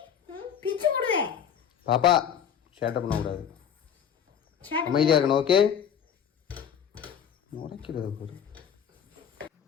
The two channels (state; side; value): quieter; right; 8.3 dB